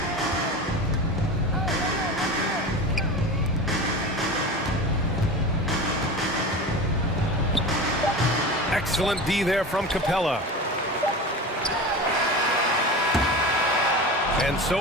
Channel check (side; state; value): both; normal; correlation 0.30